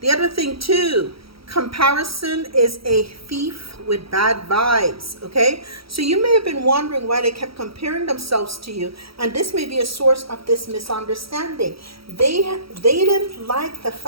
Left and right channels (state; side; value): late; left; 0.75 ms